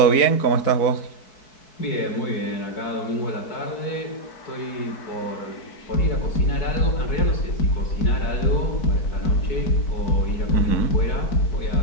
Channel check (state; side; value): late; right; 4.6 ms